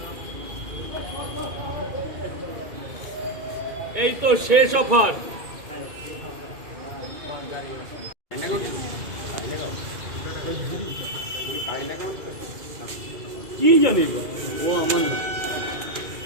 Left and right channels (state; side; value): late; left; 2.4 ms